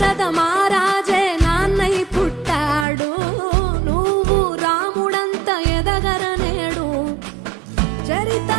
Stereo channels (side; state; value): left; drops out; at 2.9 s